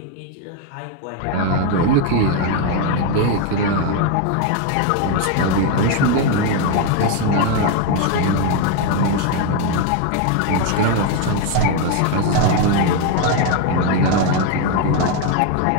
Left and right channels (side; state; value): both; different; correlation 0.01